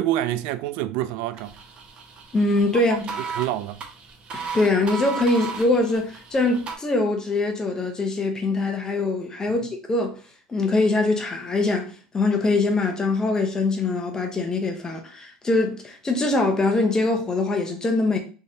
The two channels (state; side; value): normal; both; correlation 0.61